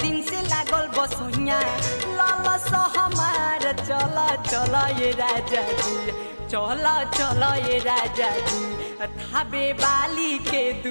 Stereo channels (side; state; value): both; inverted; correlation -1.00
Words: दिन से लागल बसुइया ललस हमार चला चला ये राजा जी चला चला ये राजा जी थाबे वाली के